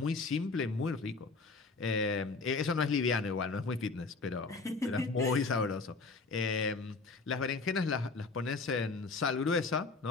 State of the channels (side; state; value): right; quieter; 4.0 dB